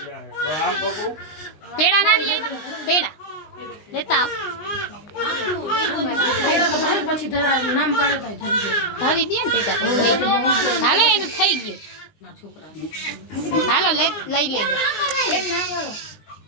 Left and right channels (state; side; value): late; right; 19 ms